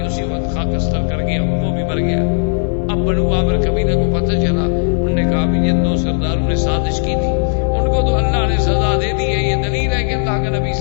اسی وقت خاکستر کر گیا, وہ بھی مر گیا. اب بنو عامر قبیلے کو پتہ چلا, انہوں نے کہا بھی جن دو سرداروں نے سازش کی تھی ان کو تو اللہ نے سزا دے دی ہے, یہ دلیل ہے کہ اللہ کا نبی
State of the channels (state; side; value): silent; right; digital silence